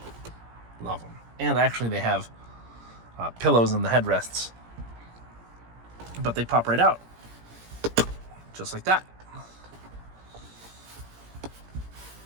Love them. And actually they have pillows in the headrests, but they pop right out just like that.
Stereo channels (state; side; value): late; left; 17 ms